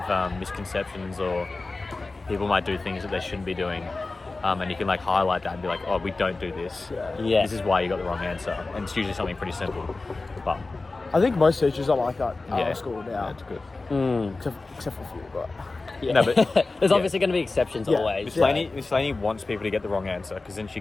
misconceptions or people might do things that they shouldn't be doing, and you can like highlight that and be like, oh, we don't do this. Yeah. This is why you got the wrong answer, and it's usually something pretty simple. But I think most teachers are like that at yeah, our school now. it's good. Except for a few, but Yeah. No, but- there's yeah. obviously going to be exceptions Yeah. always. Miss Laney wants people to get the wrong answer because then she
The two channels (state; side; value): quieter; right; 3.5 dB